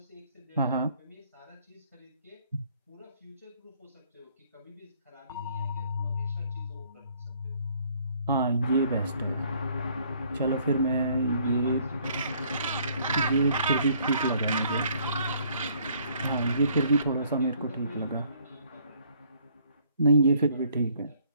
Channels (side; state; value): both; inverted; correlation -0.63